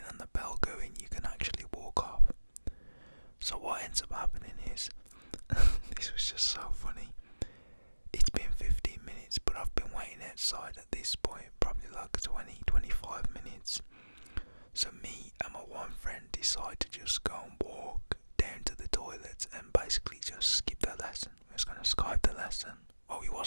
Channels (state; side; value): inverted; both; correlation -1.00